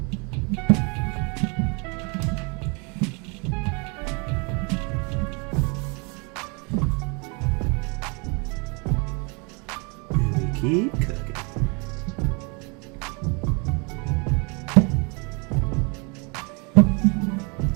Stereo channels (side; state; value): left; quieter; 32.5 dB